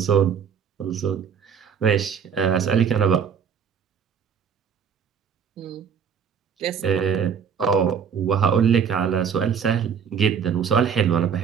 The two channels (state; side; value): quieter; left; 7.2 dB